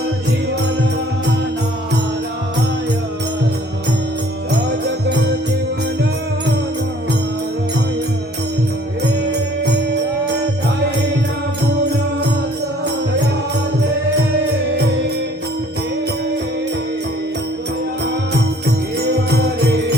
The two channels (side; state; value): both; normal; correlation 0.56